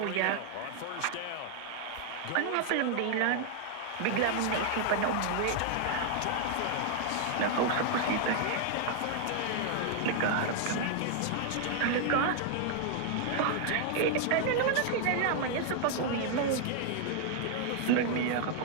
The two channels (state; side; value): different; both; correlation 0.00